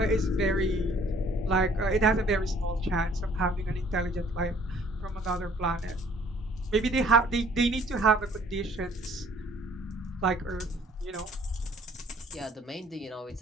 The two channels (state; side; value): normal; both; correlation 0.58